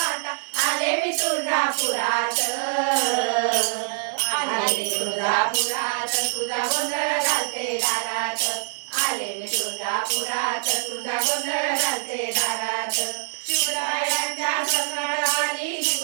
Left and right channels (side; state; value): left; silent; 62 dB below the other